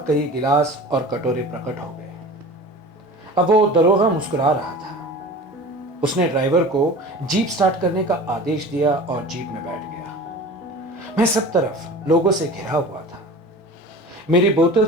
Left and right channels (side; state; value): both; normal; correlation 0.37